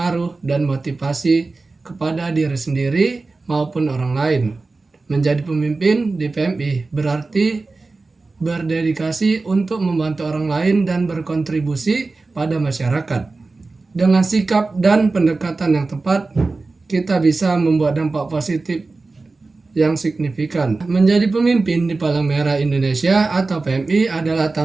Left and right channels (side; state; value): left; quieter; 3.7 dB